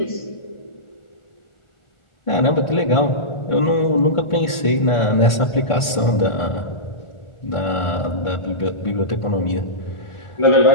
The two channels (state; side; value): late; right; 1.5 ms